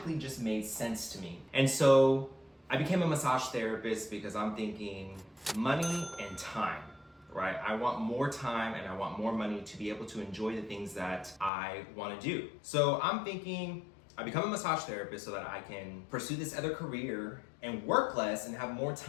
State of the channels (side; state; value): right; drops out; at 11.5 s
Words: just made sense to me. And so I became a massage therapist because I'm thinking money and time. Right? I want more time and I want more money to be able to enjoy the things that I want to do. So I'm thinking I become a massage therapist so that I can pursue this other career and work less and have more